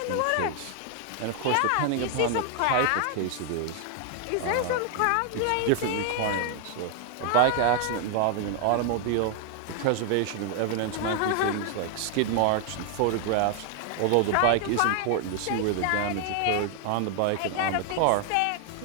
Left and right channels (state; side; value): different; both; correlation 0.00